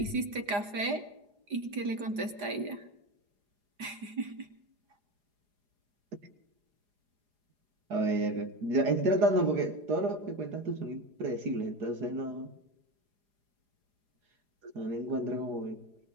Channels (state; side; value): late; left; 4.9 ms